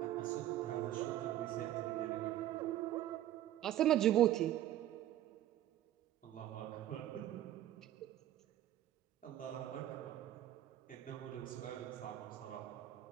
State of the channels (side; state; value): left; quieter; 12.8 dB